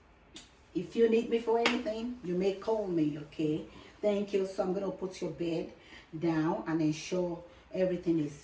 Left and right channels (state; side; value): identical; both; correlation 1.00